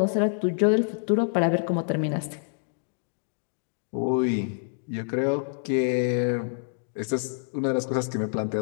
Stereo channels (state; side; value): silent; right; digital silence